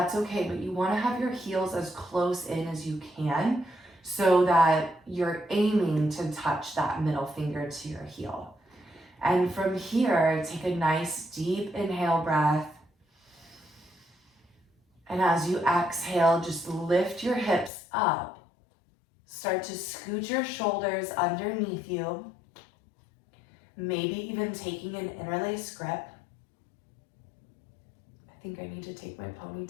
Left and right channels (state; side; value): drops out; right; at 17.7 s